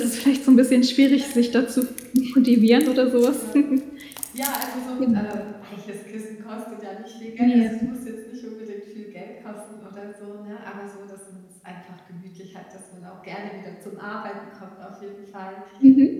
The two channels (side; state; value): both; identical; correlation 1.00